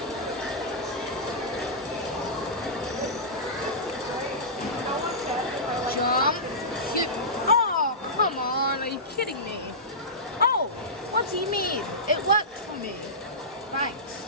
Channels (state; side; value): normal; both; correlation -0.17